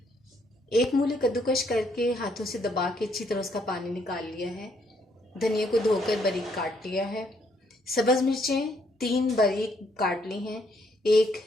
एक मूली कद्दूकश करके हाथों से दबा के अच्छी तरह उसका पानी निकाल लिया है। धनिया को धोकर बारीक काट लिया है। सब्ज मिर्चें 3 बारीक काट ली हैं। एक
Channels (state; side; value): normal; both; correlation 0.70